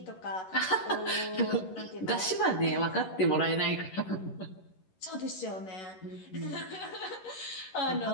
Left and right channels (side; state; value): right; late; 11 ms